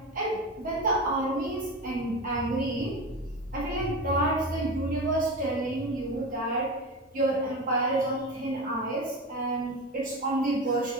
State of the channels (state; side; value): normal; both; correlation 0.25